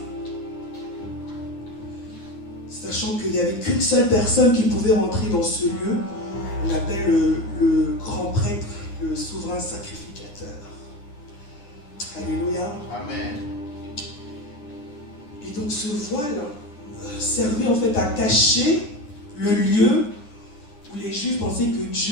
Sachant qu'il n'y avait qu'une seule personne qui pouvait rentrer dans ce lieu, on appelle le grand prêtre, le souverain sacrificateur. Alléluia. Amen. Et donc ce voile servait en fait à cacher le lieu où les Juifs pensaient que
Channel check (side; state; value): right; late; 9.9 ms